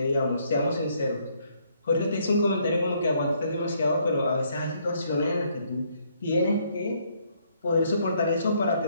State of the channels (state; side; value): inverted; both; correlation -0.70